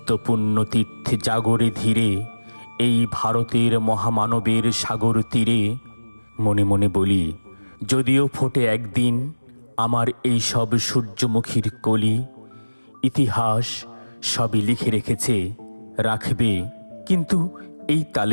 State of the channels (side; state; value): both; inverted; correlation -1.00